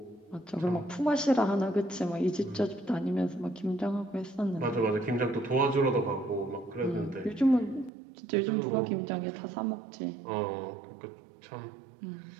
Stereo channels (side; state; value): left; drops out; at 7.9 s